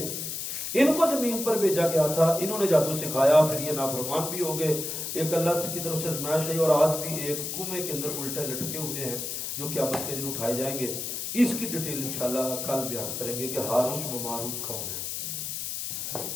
ان کو زمین پر بھیجا گیا تھا. انہوں نے جادو سکھایا، پھر یہ نافرمان بھی ہو گئے. ایک اللہ کی طرف سے آزمائش ہے، اور آج بھی ایک کنویں کے اندر الٹے لٹکے ہوئے ہیں جو قیامت کے دن اٹھائے جائیں گے. اس کی ڈیٹیل انشاءاللہ کل بیان کریں گے کہ ہاروت و ماروت کون ہے.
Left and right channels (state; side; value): noise; left; hiss, 4 dB below the sound